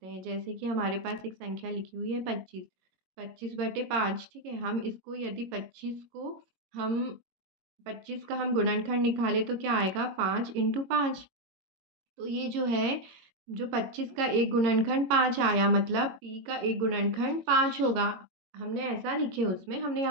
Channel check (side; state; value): left; late; 22 ms